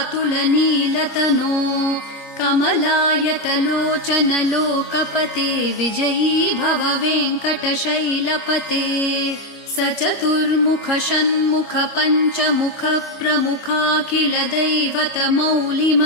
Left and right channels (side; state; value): right; late; 25 ms